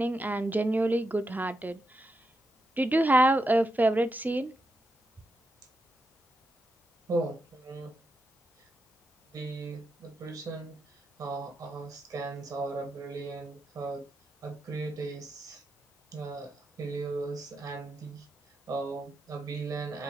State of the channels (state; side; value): normal; both; correlation 0.85